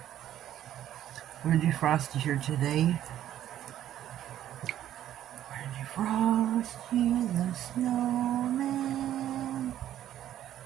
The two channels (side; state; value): left; quieter; 11.7 dB